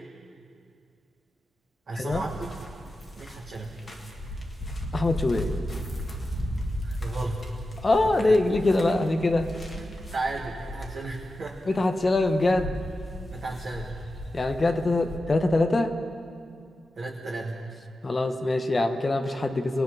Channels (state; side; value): normal; both; correlation 0.92